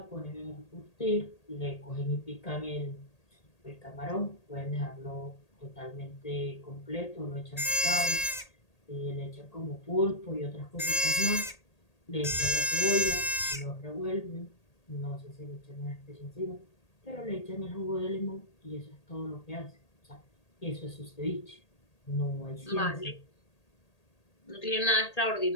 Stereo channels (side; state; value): right; late; 1.8 ms